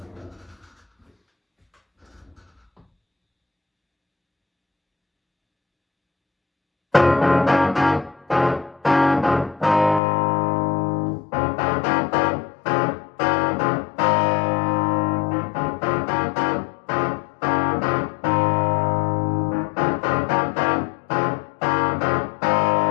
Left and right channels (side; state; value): right; drops out; at 10.0 s